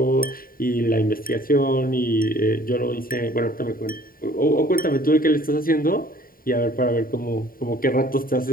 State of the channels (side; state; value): right; late; 0.42 ms